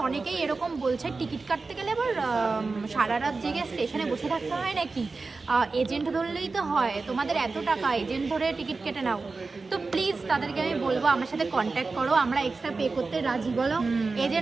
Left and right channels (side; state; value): left; quieter; 4.0 dB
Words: অনেকেই এরকম বলছে টিকিট কাটতে গেলে আবার সারা রাত জেগে স্টেশনে বসে থাকতে হয় নাকি, এজেন্ট ধরলেই তো হয়, তোমাদের এত টাকা, এজেন্ট ধরে টিকিট কেটে নাও। তো প্লিজ তাদেরকে আমি বলবো আমার সাথে কন্ট্যাক্ট করো, আমরা এক্সট্রা পে করতে রাজি, বলো